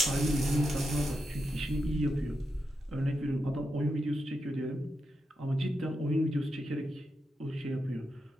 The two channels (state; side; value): normal; both; correlation 0.86